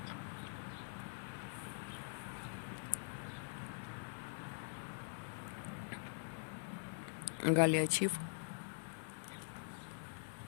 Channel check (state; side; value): silent; right; digital silence